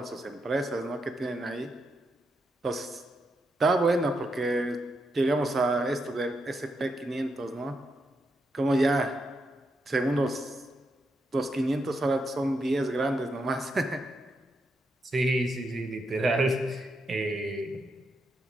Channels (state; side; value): normal; both; correlation 0.82